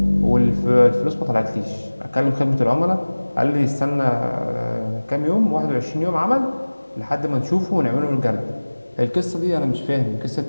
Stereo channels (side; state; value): both; inverted; correlation -1.00